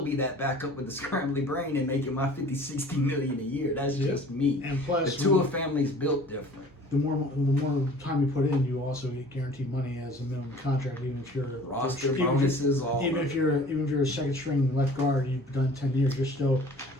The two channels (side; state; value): both; normal; correlation 0.48